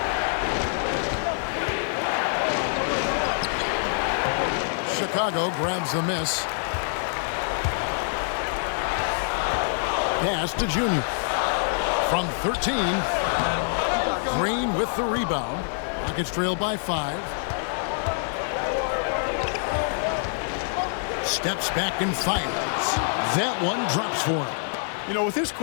Chicago grabs the miss. Pass to Junior. From 13. Green with the rebound. Rockets trail by 5. Steps back and fires. That one drops for him. You know, with his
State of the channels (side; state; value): right; silent; digital silence